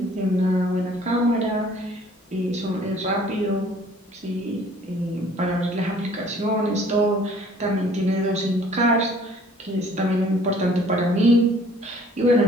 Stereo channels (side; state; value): both; normal; correlation 0.55